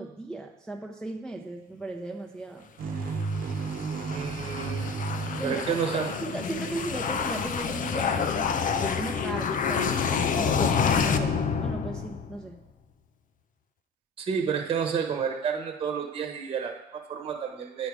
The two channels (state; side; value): normal; both; correlation 0.36